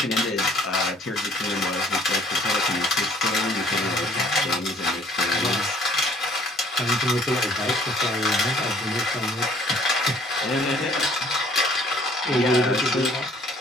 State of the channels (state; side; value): normal; both; correlation 0.57